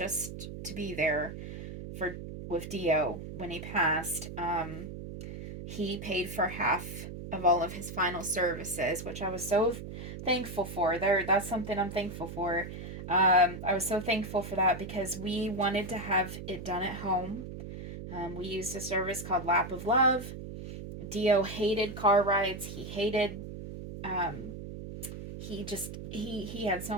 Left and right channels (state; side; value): noise; right; hum, 9 dB below the sound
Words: to be there for with Dio when he passed. He paid for half of all of his final services, which I was so thankful for. That's something I'm thankful for. I was so thankful for that because we wanted to have it done at home. We used a service called Lap of Love. Dio hated car rides. He hated um, he had